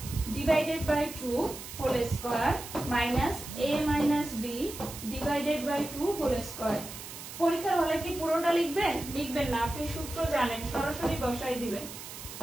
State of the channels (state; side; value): noise; right; hiss, 11 dB below the sound